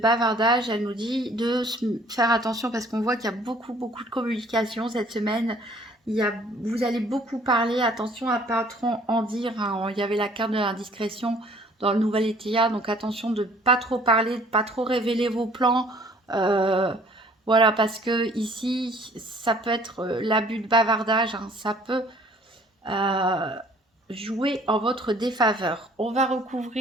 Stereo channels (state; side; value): normal; both; correlation 0.56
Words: elle nous dit de faire attention parce qu'on voit qu'il y a beaucoup de communication cette semaine. Vous allez beaucoup parler, attention à pas trop en dire, hein. Il y avait la carte de l'indiscrétion dans le nouvel ETA, donc attention de pas trop parler, de pas trop révéler vos plans. Voilà, parce que ici, ça peut être l'abus de bavardage, hein. Ça peut jouer en votre défaveur. On va